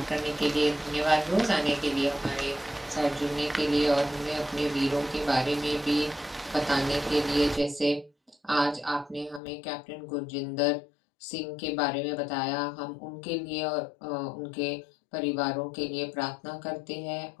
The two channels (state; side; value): drops out; right; at 9.4 s